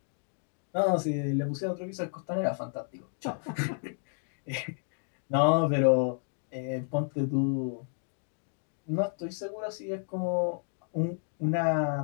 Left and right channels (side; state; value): right; silent; 57 dB below the other